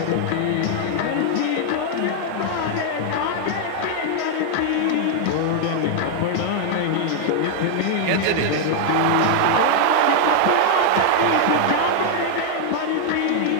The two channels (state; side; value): different; both; correlation 0.00